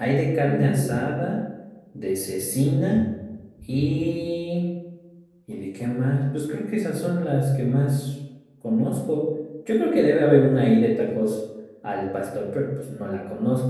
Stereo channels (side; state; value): both; identical; correlation 1.00